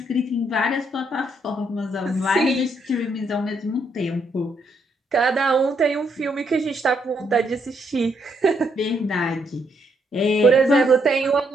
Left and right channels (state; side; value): normal; both; correlation 0.74